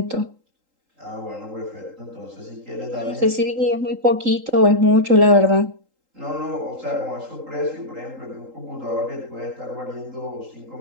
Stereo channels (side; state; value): left; late; 3.8 ms